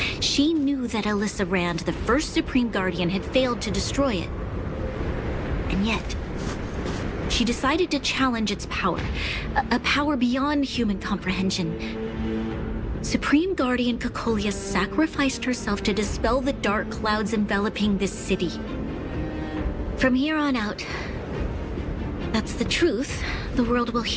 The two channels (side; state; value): both; identical; correlation 1.00